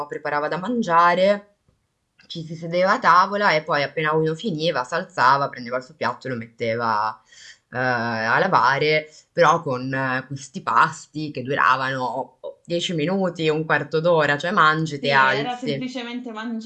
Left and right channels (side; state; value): both; identical; correlation 1.00